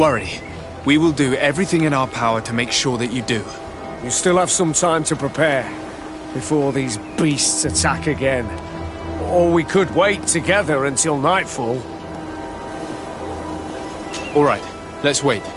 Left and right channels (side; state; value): both; identical; correlation 1.00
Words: We will do everything in our power to make sure that you do. You still have some time to prepare, before these beasts attack again. Or we could wait together until nightfall. All right, let's wait.